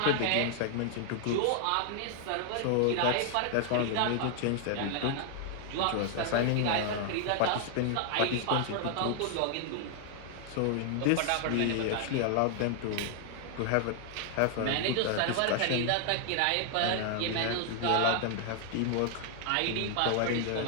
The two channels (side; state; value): both; different; correlation 0.00